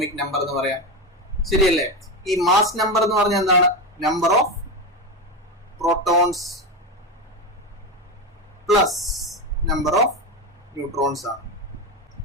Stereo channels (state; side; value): normal; both; correlation 0.16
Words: നമ്പർ എന്ന് പറയാം. ശരിയല്ലേ. ഈ മാസ് നമ്പർ എന്ന് പറഞ്ഞാൽ എന്താണ്? Number of protons plus number of neutrons ആണ്.